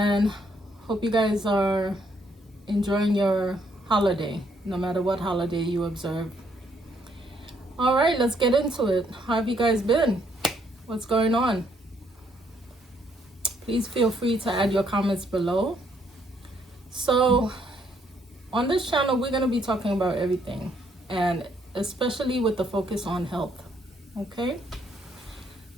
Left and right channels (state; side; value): normal; both; correlation 0.70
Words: hope you guys are enjoying your holiday, no matter what holiday you observe. All right, let's get into it. How have you guys been? What's going on? Please feel free to add your comments below. So on this channel, we're going to be talking about everything, and especially with the focus on health. Okay?